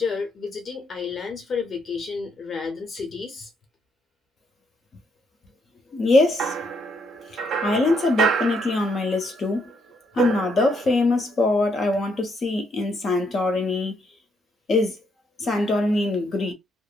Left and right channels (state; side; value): normal; both; correlation 0.74